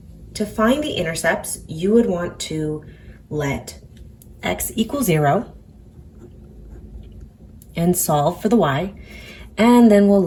to find the intercepts, you would want to let x equal 0 and solve for the y, and then we'll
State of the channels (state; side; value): identical; both; correlation 1.00